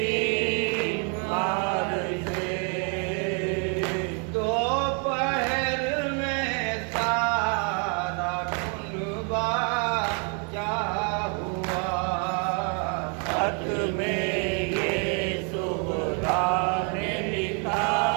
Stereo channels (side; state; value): left; quieter; 37.8 dB